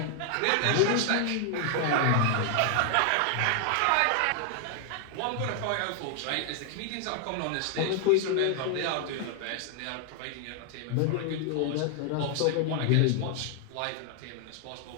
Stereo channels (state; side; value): different; both; correlation 0.00